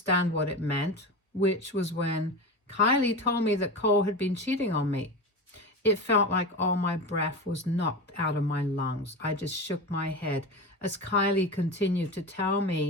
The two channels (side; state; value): both; normal; correlation 0.25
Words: what it meant, which was when Kylie told me that Cole had been cheating on me. It felt like all my breath was knocked out of my lungs. I just shook my head as Kylie continued to tell